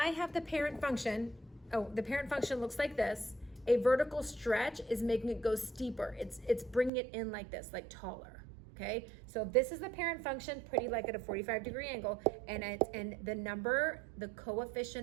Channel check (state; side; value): drops out; left; at 6.9 s